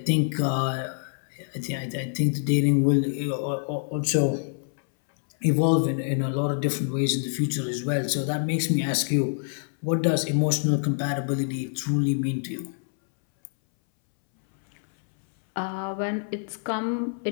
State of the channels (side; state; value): right; silent; 61 dB below the other